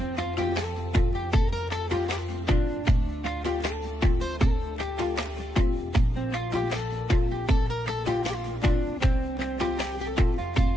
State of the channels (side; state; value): both; normal; correlation 0.83